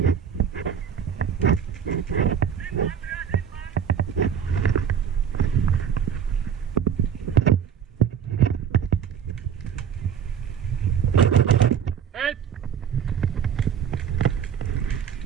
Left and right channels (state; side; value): quieter; left; 8.1 dB